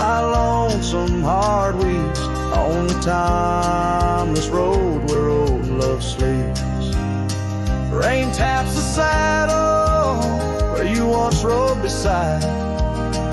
lonesome heart weeps on the timeless road where old love sleeps. Rain taps the saddle where you once rode beside,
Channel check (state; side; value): identical; both; correlation 1.00